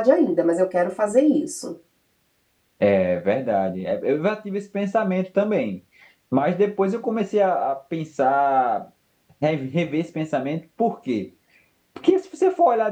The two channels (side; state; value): both; identical; correlation 1.00